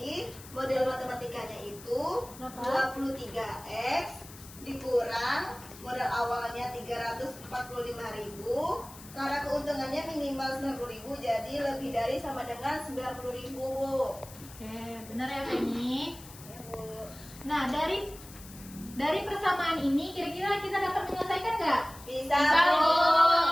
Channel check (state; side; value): noise; left; hiss, 18 dB below the sound